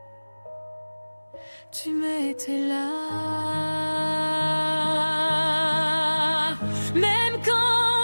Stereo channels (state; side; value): inverted; both; correlation -1.00